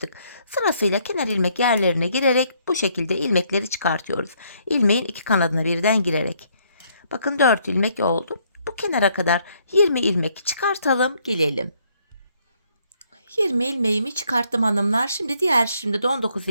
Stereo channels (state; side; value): inverted; both; correlation -0.69